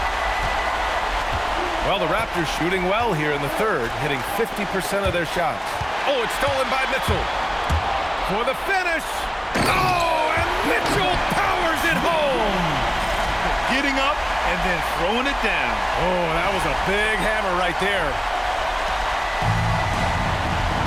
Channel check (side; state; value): both; identical; correlation 1.00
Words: Well, the Raptors shooting well here in the third, hitting 50% of their shots. Oh, it's stolen by Mitchell. For the finish. Oh, and Mitchell powers it home. Getting up and then throwing it down. Oh, that was a big hammer right there.